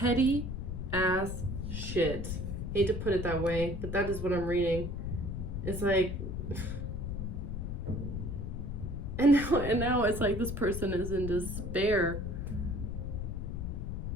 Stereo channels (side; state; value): left; noise; rumble, 4 dB below the sound